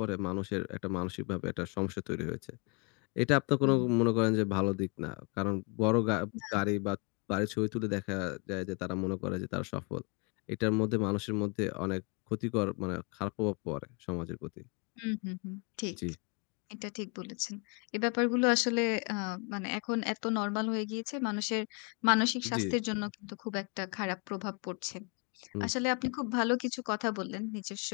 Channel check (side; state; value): right; quieter; 33.3 dB